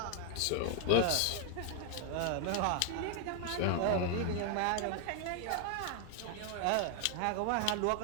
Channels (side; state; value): both; different; correlation 0.00